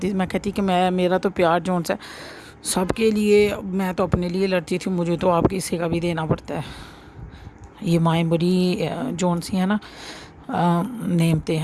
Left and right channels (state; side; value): identical; both; correlation 1.00